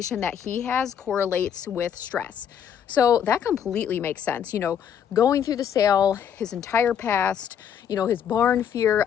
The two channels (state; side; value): quieter; right; 8.5 dB